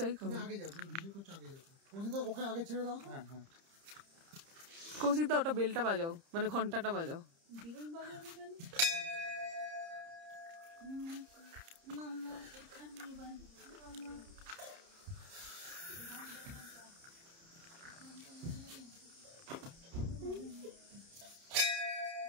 খাবো। আগে যাও, তুমি ভিডিও করছো, আগে যাও। কৌশিকদা ওকে আগে ছেড়ে দাও। হ্যাঁ হ্যাঁ। কৌশিকদা ওটা বেলটা বাজাও, মানে ঘন্টাটা বাজাও।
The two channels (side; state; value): left; late; 30 ms